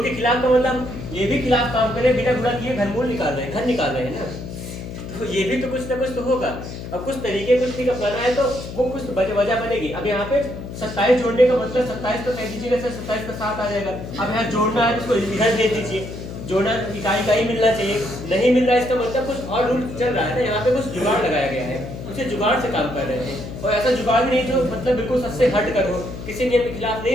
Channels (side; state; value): left; noise; hum, 9 dB below the sound